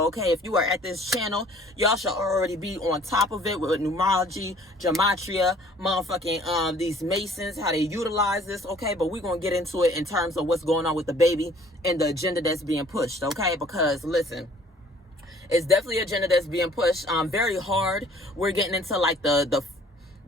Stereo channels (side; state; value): both; normal; correlation 0.55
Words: okay? If you are at this channel, y'all should already be on top of it with numerology, Gematria, motherfucking these Masons, how they utilize this, okay? But we're going to get into it in terms of what's going on with Dababy and the agenda that's being pushed, okay? Because, listen, it's definitely an agenda that's being pushed very hard. We're getting into, like, the